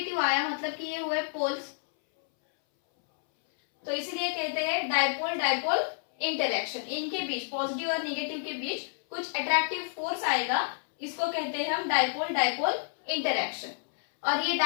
आया, मतलब कि ये हुए पोल्स। तो इसीलिए कहते हैं डायपोल इंटरैक्शन। इनके बीच, पॉजिटिव और निगेटिव के बीच कुछ अट्रैक्टिव फोर्स आएगा, इसको कहते हैं हम डायपोल इंटरैक्शन। और ये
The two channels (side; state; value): right; silent; 58 dB below the other